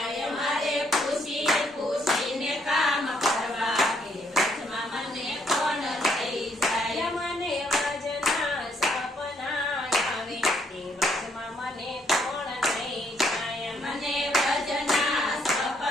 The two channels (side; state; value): both; normal; correlation 0.70